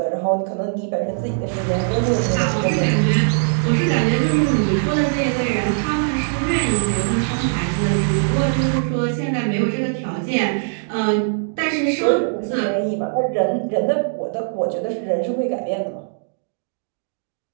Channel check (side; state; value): left; silent; digital silence